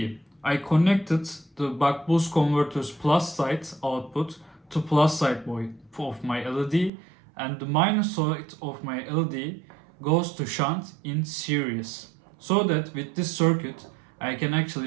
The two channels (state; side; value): drops out; left; at 6.9 s